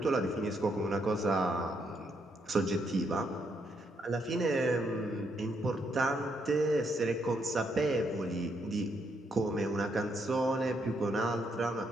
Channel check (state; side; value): normal; both; correlation 0.76